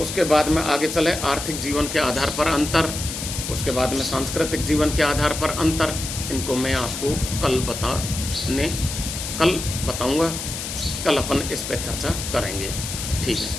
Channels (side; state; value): left; noise; hiss, 6 dB below the sound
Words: बाद में आगे चले आर्थिक जीवन के आधार पर अंतर, उसके बाद में सांस्कृतिक जीवन के आधार पर अंतर। इनको मैं आपको कल बताऊंगा। कल अपन इस पर चर्चा करेंगे। ठीक